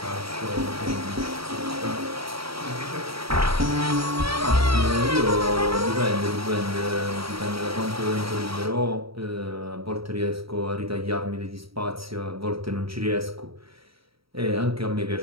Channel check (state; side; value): late; left; 0.75 ms